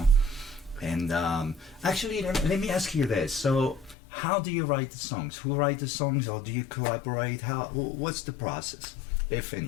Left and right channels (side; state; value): right; drops out; at 4.0 s